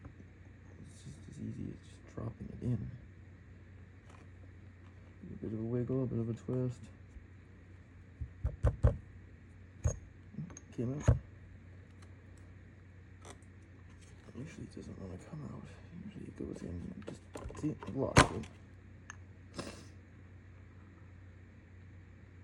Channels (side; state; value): both; identical; correlation 1.00